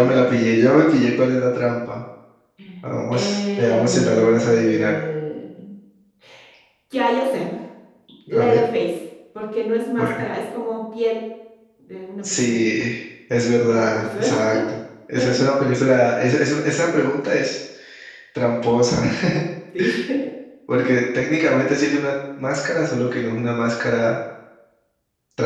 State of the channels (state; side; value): identical; both; correlation 1.00